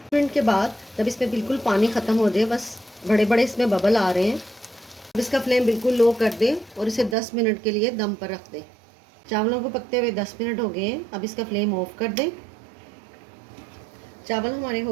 मिनट के बाद जब इसमें बिल्कुल पानी ख़त्म हो जाए, बस बड़े बड़े इसमें बबल आ रहे हैं, अब इसका फ्लेम बिल्कुल लो कर दें और इसे 10 मिनट के लिए दम पर रख दें। चावलों को पकते हुए 10 मिनट हो गए हैं, अब इसका फ्लेम ऑफ कर दें। चावल हमारे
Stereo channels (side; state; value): left; drops out; at 7.2 s